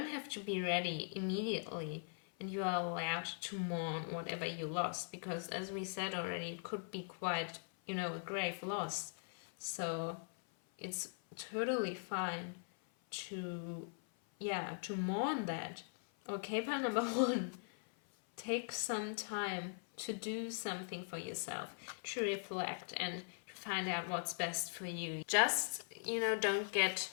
have to be ready immediately, and you are allowed to mourn whatever you lost, because as we said already, it could be quite, a grave loss. So it's totally fine to mourn that. Okay, part number 1. Take some time to do something for yourself, to reflect and to find out what's best for you. Just, don't get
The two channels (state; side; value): silent; right; 50 dB below the other